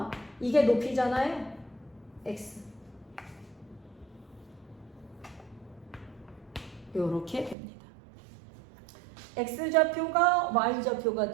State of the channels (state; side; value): drops out; left; at 7.6 s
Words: 이게 높이잖아요. x. 요렇게 됩니다. x좌표가 y좌표가